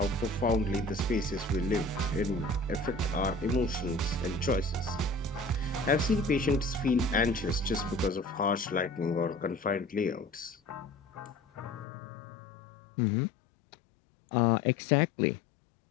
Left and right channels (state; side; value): drops out; right; at 11.9 s